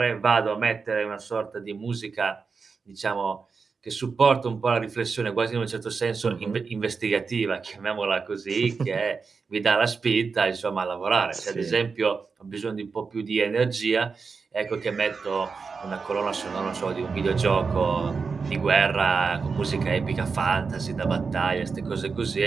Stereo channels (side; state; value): left; quieter; 5.0 dB